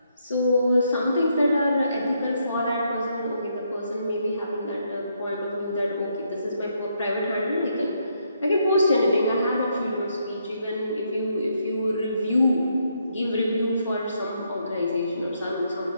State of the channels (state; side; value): inverted; both; correlation -0.75